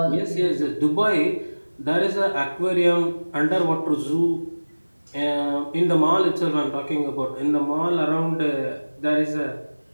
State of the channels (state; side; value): inverted; both; correlation -1.00